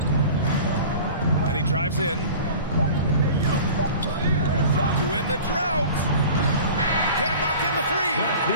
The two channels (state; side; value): inverted; both; correlation -0.41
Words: And he drives in. To win the drought. Can't knock in the